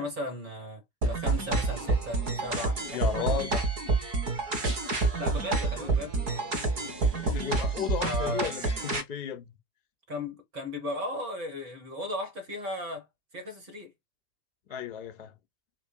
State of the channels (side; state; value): left; late; 4.7 ms